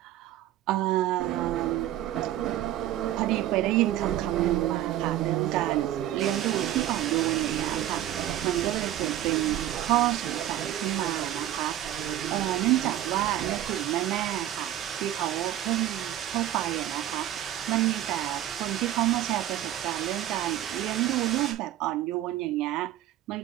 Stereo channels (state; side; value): quieter; left; 12.9 dB